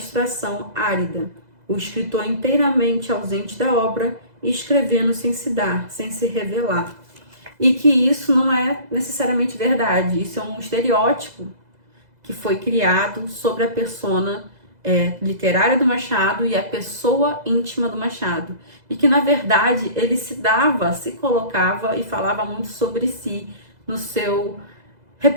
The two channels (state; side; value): late; left; 2.0 ms